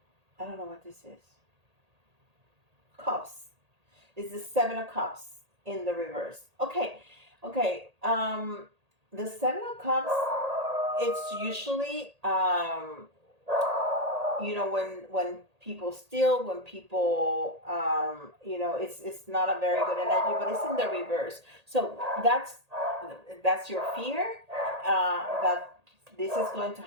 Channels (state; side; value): late; left; 1.8 ms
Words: I don't know what this is. Cups. It's the Seven of Cups in the reverse. Okay. Okay. The Seven of Cups. It's usually when people steal, when people it's not a very good energy, but it's in the reverse. So that's your fear, that this is going to